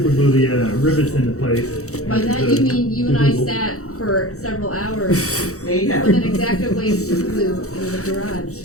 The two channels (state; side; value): late; right; 0.65 ms